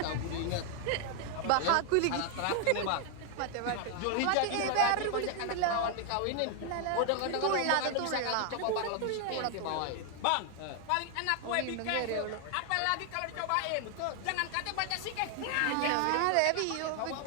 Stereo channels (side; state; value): both; different; correlation 0.00